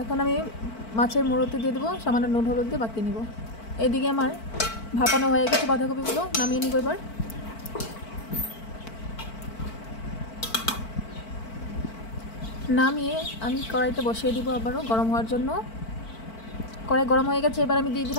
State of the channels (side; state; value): right; late; 4.5 ms